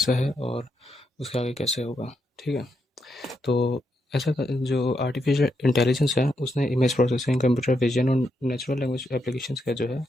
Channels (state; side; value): normal; both; correlation 0.81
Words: है और उसके आगे कैसे होगा। ठीक है, तो जो आर्टिफिशियल इंटेलिजेंस है उसने इमेज प्रोसेसिंग, कंप्यूटर विजन और नेचुरल लैंग्वेज एप्लीकेशंस का जो है